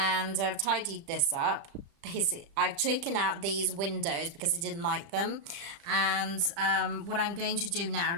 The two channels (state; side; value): late; left; 35 ms